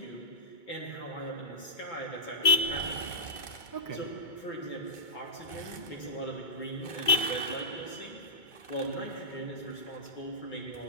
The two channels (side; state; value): right; late; 2.2 ms